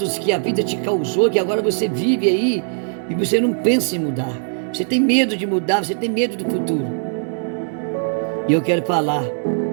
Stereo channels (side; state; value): left; silent; digital silence